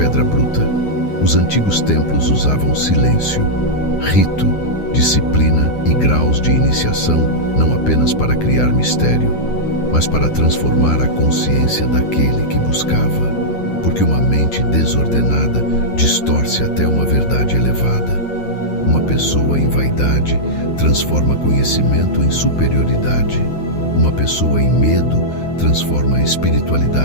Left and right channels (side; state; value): right; late; 9.7 ms